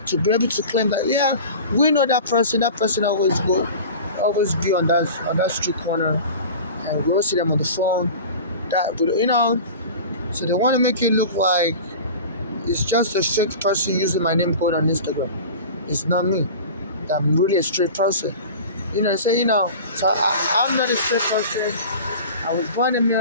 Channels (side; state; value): both; inverted; correlation -0.36